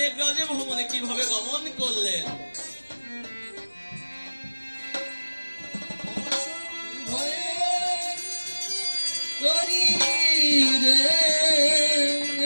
ভবনে কিভাবে গমন করলেন।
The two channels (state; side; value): inverted; both; correlation -1.00